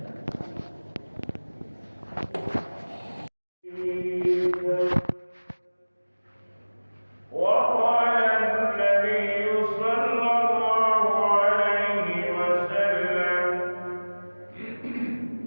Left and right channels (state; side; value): inverted; both; correlation -1.00